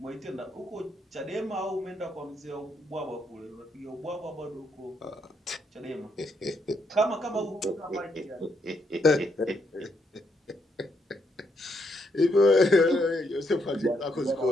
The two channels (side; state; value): both; normal; correlation 0.77